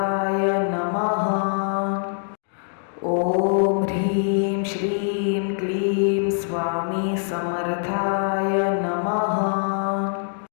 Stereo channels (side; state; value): right; silent; digital silence